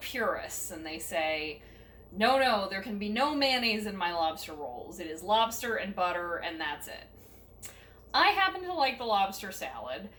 and they say, no, there can be no mayonnaise in my lobster rolls. It is lobster and butter and that's it. I happen to like the lobster salad.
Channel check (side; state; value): both; identical; correlation 1.00